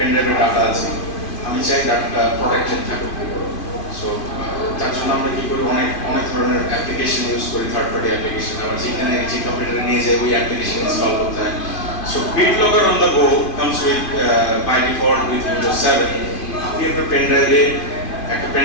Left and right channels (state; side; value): late; right; 2.5 ms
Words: ড্রাইভে ডাটা আছে, আমি চাই ডাটাটা প্রোটেক্টেড থাকুক। সো তার জন্য আমরা কি করি, অনেক ধরনের অ্যাপ্লিকেশন ইউজ করি, থার্ড পার্টি অ্যাপ্লিকেশন, আবার যেখানে যে কম্পিউটারে নিয়ে যাই ওই অ্যাপ্লিকেশন ইনস্টল করতে হয়। So BitLocker on the go comes with by default with Windows 7। আপনি আপনার পেন ড্রাইভে একটা পেন